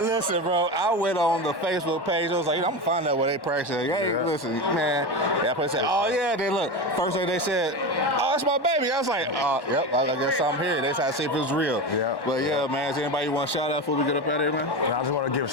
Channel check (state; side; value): late; right; 1.1 ms